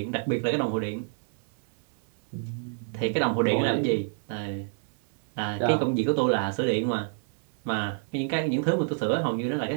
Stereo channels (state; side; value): silent; left; 59 dB below the other